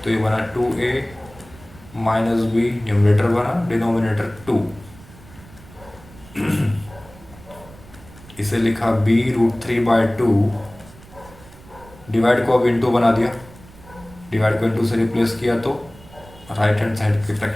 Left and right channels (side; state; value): right; noise; rumble, 21 dB below the sound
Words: तो ये बना 2a माइनस b, न्यूमरेटर बना, डिनोमिनेटर 2। इसे लिखा b√3/2, डिवाइड को अब इनटू बना दिया, डिवाइड को इनटू से रिप्लेस किया तो राइट हैंड साइड के